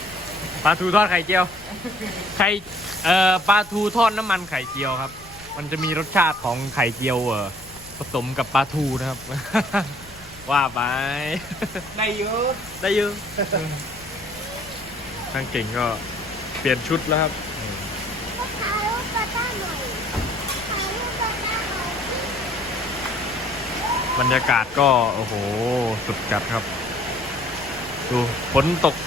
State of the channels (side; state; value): left; noise; rumble, 22 dB below the sound